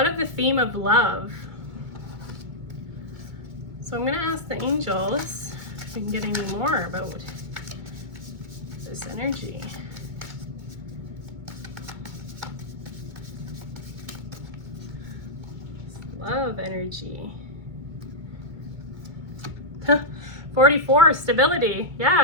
the theme of love. So I'm going to ask the angels if we can get any more about this energy? Love energy. 44, stability.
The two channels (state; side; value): late; left; 2.2 ms